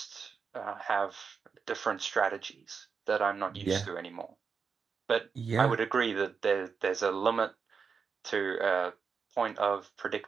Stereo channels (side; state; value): left; quieter; 5.7 dB